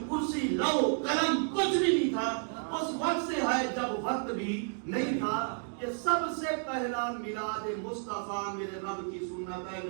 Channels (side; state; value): left; silent; 57 dB below the other